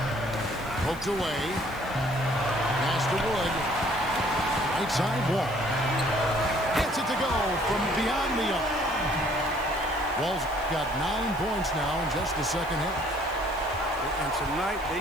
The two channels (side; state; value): left; noise; hiss, 23 dB below the sound